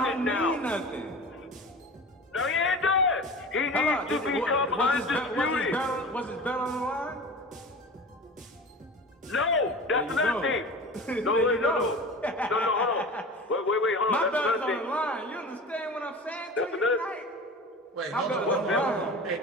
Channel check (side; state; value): both; normal; correlation 0.34